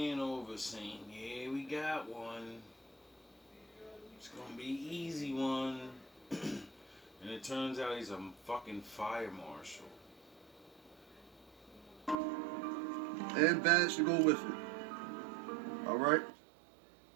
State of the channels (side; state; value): left; drops out; at 12.2 s